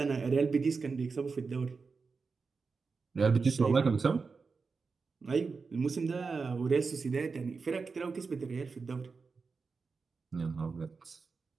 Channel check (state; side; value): quieter; left; 4.7 dB